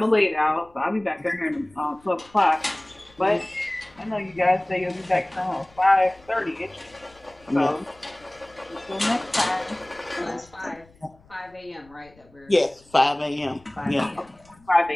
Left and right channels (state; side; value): noise; left; rumble, 28 dB below the sound